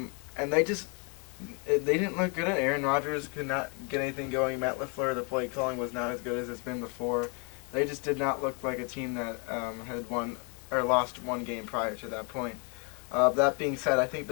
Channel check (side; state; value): right; quieter; 35.5 dB